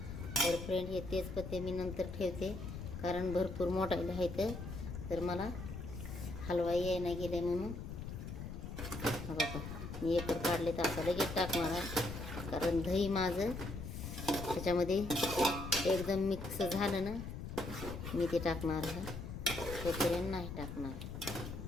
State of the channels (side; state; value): left; noise; rumble, 7 dB below the sound